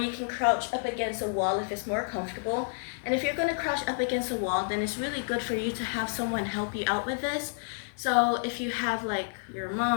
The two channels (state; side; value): silent; right; 58 dB below the other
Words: can crouch up against a wall if it's more comfortable. And if you're going to crouch up against a wall, then it's really good for you to have someone help you out with this. So if you have like your